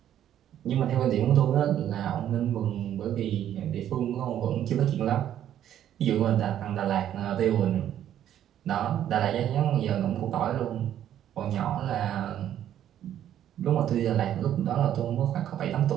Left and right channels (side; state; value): left; quieter; 10.9 dB